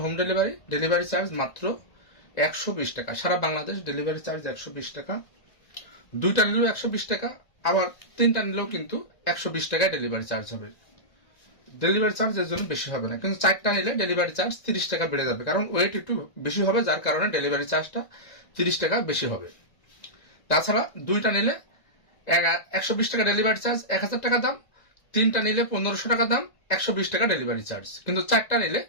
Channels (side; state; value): right; late; 1.9 ms